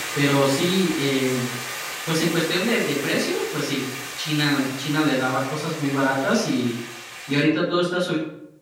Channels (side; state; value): both; identical; correlation 1.00